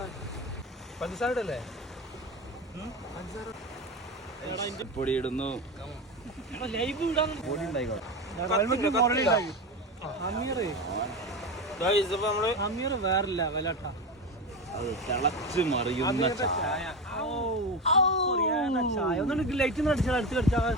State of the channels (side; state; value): both; normal; correlation 0.20